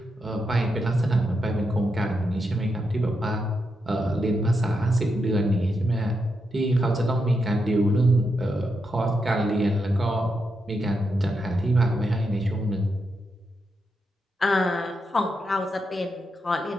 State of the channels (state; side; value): normal; both; correlation 0.84